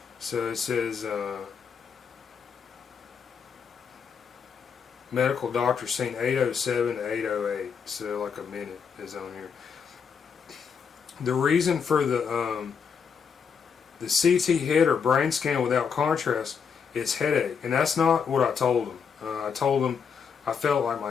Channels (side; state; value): right; quieter; 6.5 dB